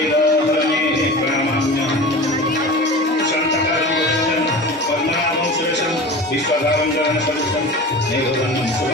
प्रणमाम्यहम्। शान्तकालं पद्मनाभं सुरेशं विश्वधारं जगन्सदृशं मेघवर्णं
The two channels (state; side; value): normal; both; correlation 0.34